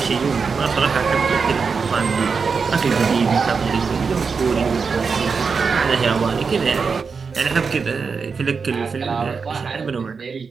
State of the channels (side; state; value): left; quieter; 5.3 dB